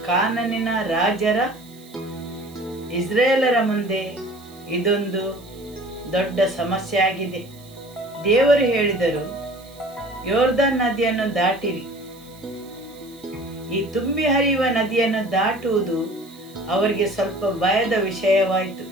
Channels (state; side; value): noise; right; hiss, 24 dB below the sound